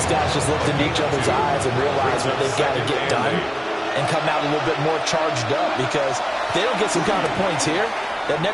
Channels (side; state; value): both; identical; correlation 1.00